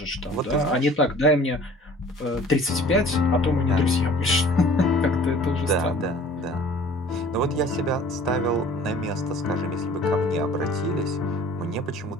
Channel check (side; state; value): both; normal; correlation 0.49